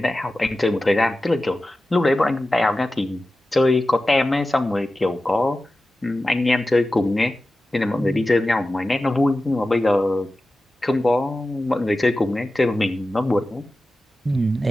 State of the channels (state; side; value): normal; both; correlation 0.94